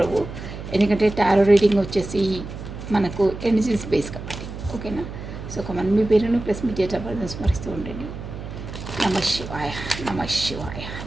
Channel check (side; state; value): right; noise; hum, 10 dB below the sound